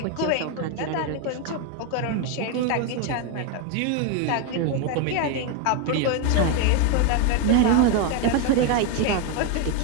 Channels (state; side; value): different; both; correlation 0.02